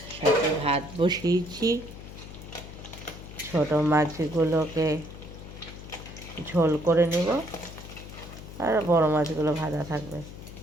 সাথে ভাত বসিয়েছি। ছোট মাছগুলোকে ঝোল করে নেব, আর বড় মাছগুলো ভাজা থাকবে।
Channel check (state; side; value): noise; left; hum, 13 dB below the sound